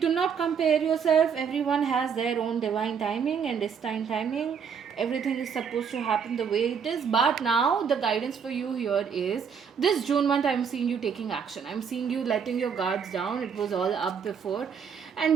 not compare yourself. Everyone has their own divine timing and destined timing. Everything is supposed to happen the way it is. But now the guidance for you here is, this June month, I'm seeing you taking action. I'm seeing you letting your guards down. It was all up before,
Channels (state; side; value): quieter; left; 6.8 dB